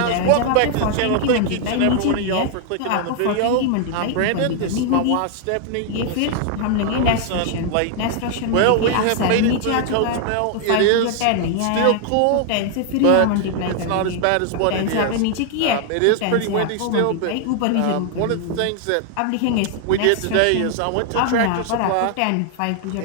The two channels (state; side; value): different; both; correlation 0.00